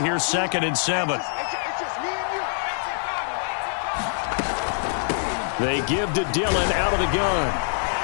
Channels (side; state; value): right; silent; digital silence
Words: 2nd and 7. They give to Dillon out of the gun.